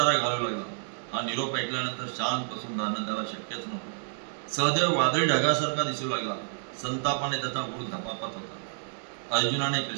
घालू लागला. हा निरोप ऐकल्यानंतर शांत बसून राहणं त्याला शक्यच नव्हतं. सहदेव वादळी ढगासारखा दिसू लागला. संतापाने त्याचा गुळ धपापत होता. अर्जुनाने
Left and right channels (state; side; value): silent; left; digital silence